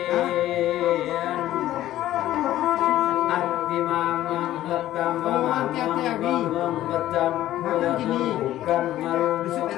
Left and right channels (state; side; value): quieter; right; 13.9 dB